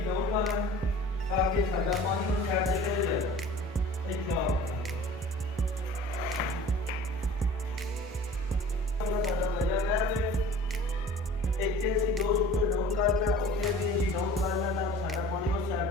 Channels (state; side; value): normal; both; correlation 0.44